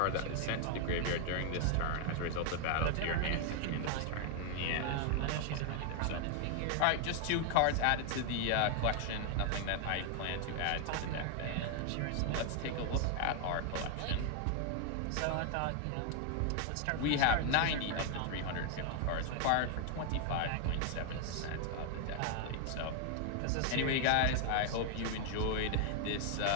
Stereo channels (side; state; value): both; different; correlation 0.00